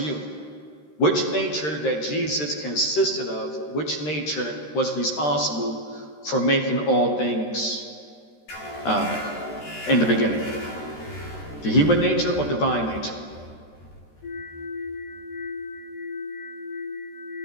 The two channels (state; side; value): late; right; 13 ms